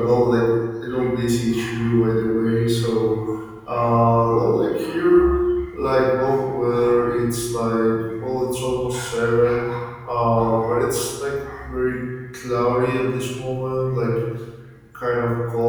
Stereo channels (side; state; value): both; identical; correlation 1.00